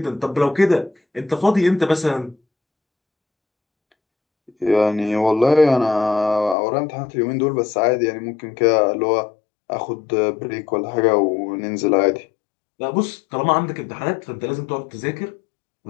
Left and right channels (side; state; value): right; drops out; at 6.6 s